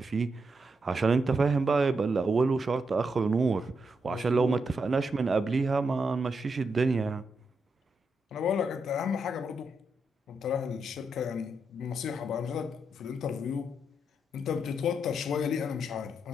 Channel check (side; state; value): both; normal; correlation 0.83